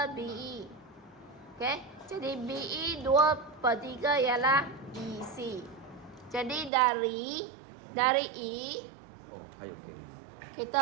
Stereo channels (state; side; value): drops out; left; at 6.7 s